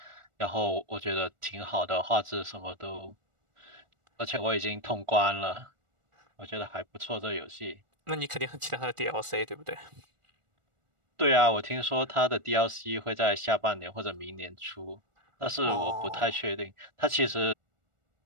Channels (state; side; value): late; left; 1.4 ms